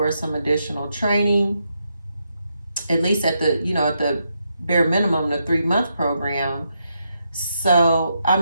some additional training, at least at the, at the bare minimum, the 3-month program. So, I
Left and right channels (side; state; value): both; inverted; correlation -0.81